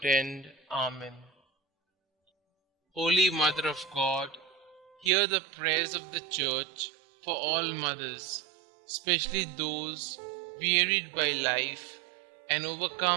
end. Amen. Holy Mother of God, hear the prayers of the Church for all mothers, especially those wearied by life and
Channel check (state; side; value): drops out; left; at 5.1 s